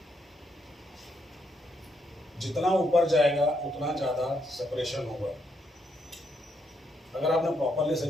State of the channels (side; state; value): both; normal; correlation 0.76